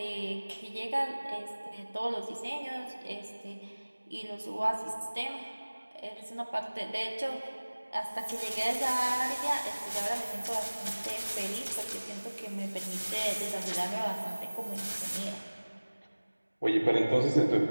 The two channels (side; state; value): both; inverted; correlation -1.00